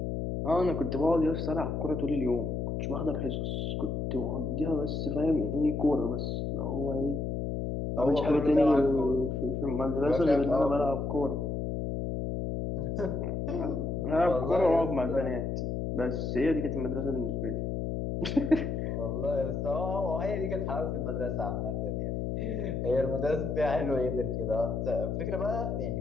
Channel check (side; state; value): left; noise; hum, 2 dB below the sound